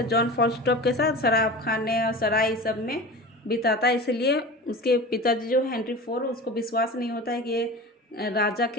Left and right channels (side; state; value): both; normal; correlation 0.33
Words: जॉन फॉलस्टॉप के साथ शराब खाने और सराय सब में बिताता है। इसलिए उसके पिताजी जो हेनरी फोर उसको विश्वास नहीं होता है कि ये राजा